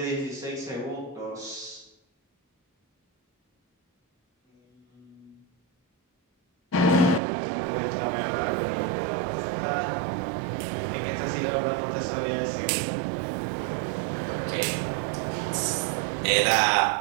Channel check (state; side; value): drops out; left; at 7.2 s